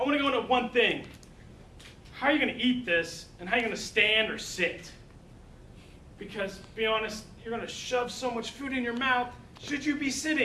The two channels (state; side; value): identical; both; correlation 1.00